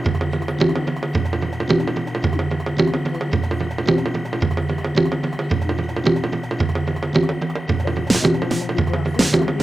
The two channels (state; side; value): normal; both; correlation 0.94